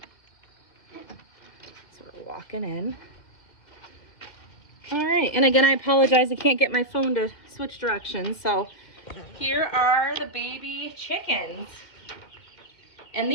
we're walking in. All right, and again, I apologize. I can't get my phone to switch directions. So here are the baby chickens. And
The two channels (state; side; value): late; right; 2.1 ms